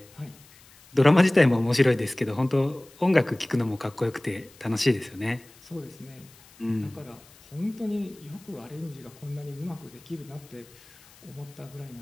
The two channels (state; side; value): noise; left; hiss, 25 dB below the sound